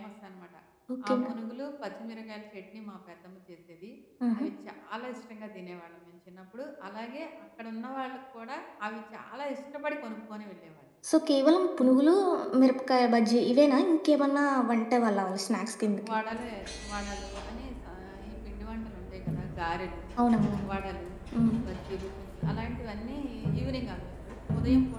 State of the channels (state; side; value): identical; both; correlation 1.00